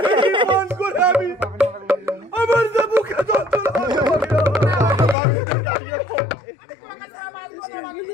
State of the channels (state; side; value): drops out; right; at 5.2 s